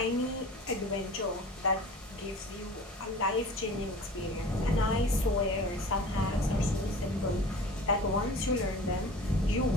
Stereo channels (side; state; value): both; normal; correlation 0.41